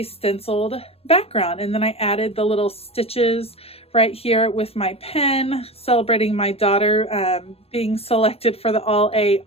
stenciled background, and then I added the little stitches right here with my pen, celebrating my daughter being selected for the All A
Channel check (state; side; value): late; right; 0.28 ms